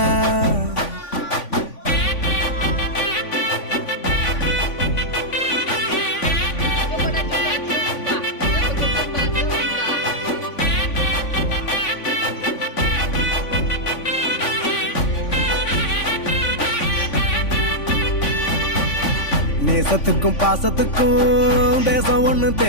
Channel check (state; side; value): late; right; 3.5 ms